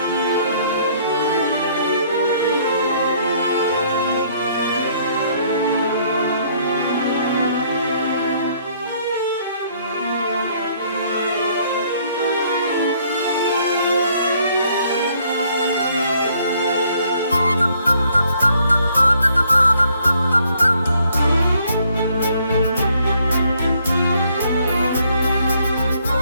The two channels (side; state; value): both; inverted; correlation -0.65